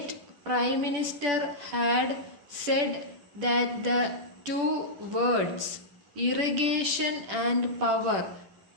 Prime Minister had said that the two words irrigation and power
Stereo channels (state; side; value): late; left; 10 ms